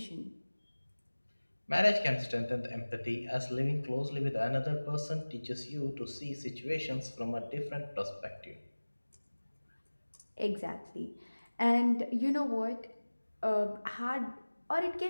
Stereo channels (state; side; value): inverted; both; correlation -1.00